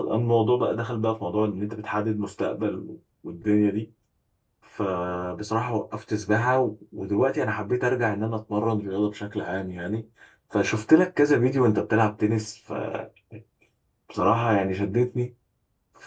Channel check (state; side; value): identical; both; correlation 1.00